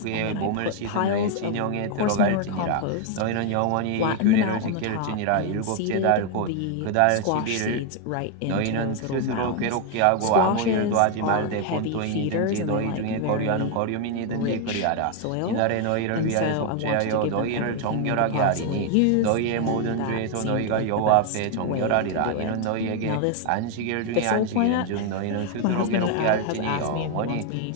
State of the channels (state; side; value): different; both; correlation 0.01